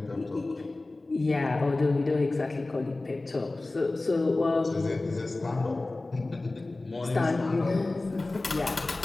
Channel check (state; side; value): quieter; right; 3.0 dB